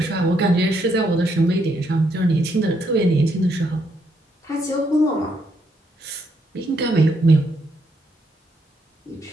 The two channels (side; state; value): both; normal; correlation 0.75